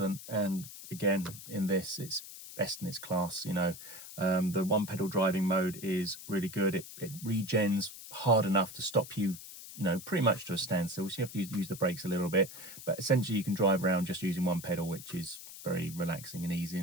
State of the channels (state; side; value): noise; left; hiss, 13 dB below the sound